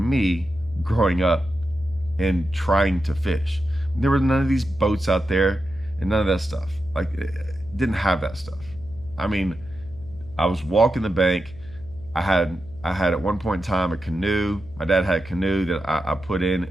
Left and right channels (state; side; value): noise; left; hum, 19 dB below the sound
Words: growing up and trying to fish. There were none of these boats out there and none of that stuff. Like, didn't have that stuff. I mean, I was walking the bank. I had at one point in time a canoe. My dad had a canoe that I put